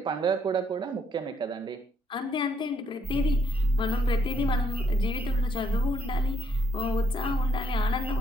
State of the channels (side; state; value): both; normal; correlation 0.72